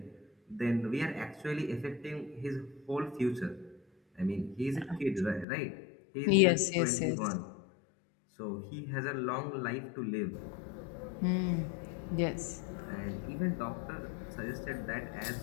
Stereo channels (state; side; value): drops out; right; at 5.5 s